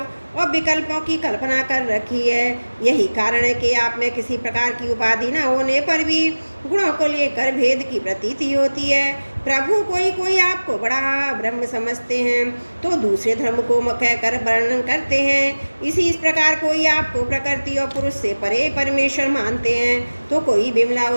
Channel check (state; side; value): inverted; both; correlation -1.00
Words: और विकल्पों की कल्पना कर रखी है। यही कारण है कि आप में किसी प्रकार की उपाधि न होने पर भी गुणों को लेकर भेद की प्रतीति होती है। प्रभु कोई कोई आपको बड़ा ब्रह्म समझते हैं तो दूसरे धर्म को कहकर वर्णन करते हैं। इस प्रकार कोई आपको प्रकृति और पुरुष से परे परमेश्वर मानते हैं तो कोई विमला